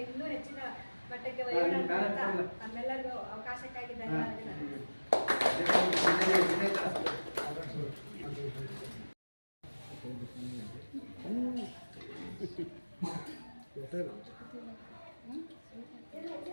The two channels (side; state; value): both; inverted; correlation -1.00